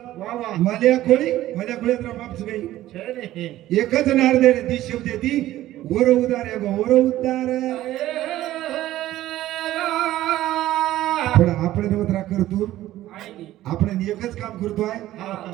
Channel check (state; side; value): quieter; left; 14.6 dB